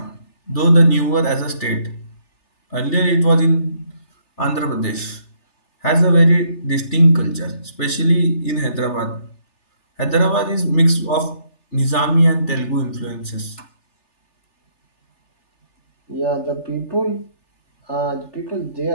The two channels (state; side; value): late; right; 3.3 ms